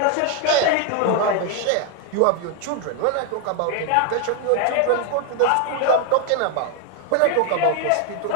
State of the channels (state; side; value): different; both; correlation 0.00